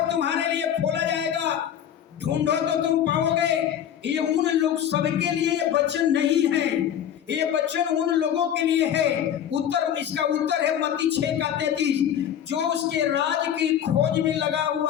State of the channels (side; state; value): right; quieter; 9.7 dB